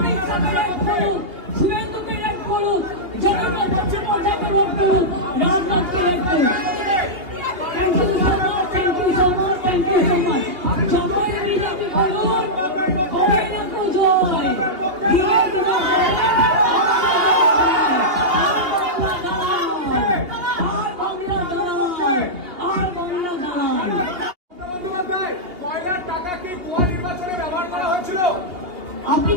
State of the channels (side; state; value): left; late; 2.8 ms